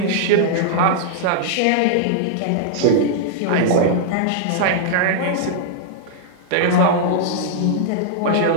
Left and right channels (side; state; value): both; different; correlation -0.01